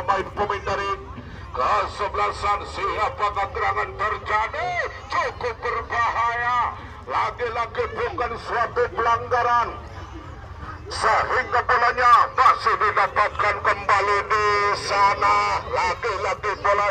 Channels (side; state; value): both; identical; correlation 1.00